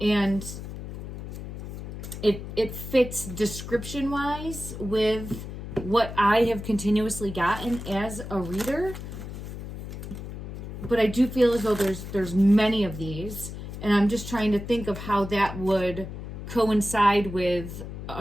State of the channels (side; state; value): left; noise; hum, 9 dB below the sound